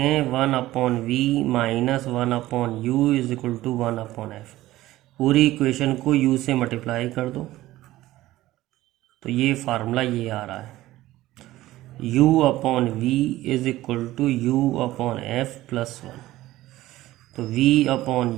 one upon v minus one upon u is equal to one upon f. पूरी इक्वेशन को यू से मल्टीप्लाई कर दो, तो ये फार्मूला ये आ रहा है, u upon v is equal to u upon f plus one. तो v upon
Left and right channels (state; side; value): quieter; left; 16.2 dB